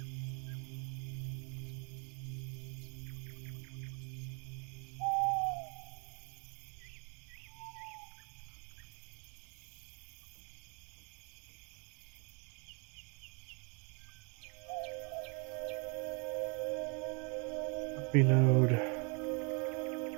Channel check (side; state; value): left; quieter; 35.2 dB